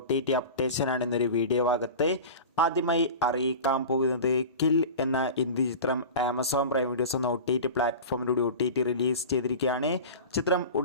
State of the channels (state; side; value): inverted; both; correlation -0.32